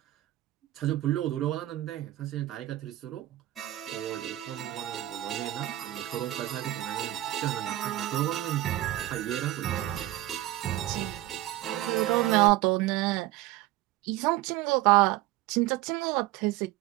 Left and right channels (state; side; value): quieter; left; 15.7 dB